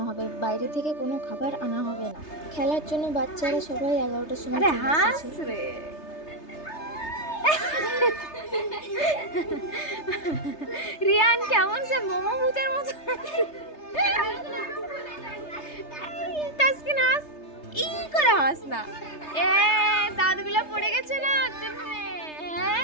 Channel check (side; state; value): right; late; 3.3 ms